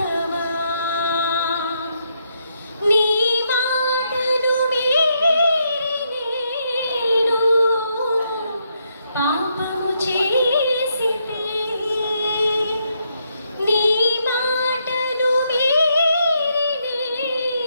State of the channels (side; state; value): both; inverted; correlation -0.78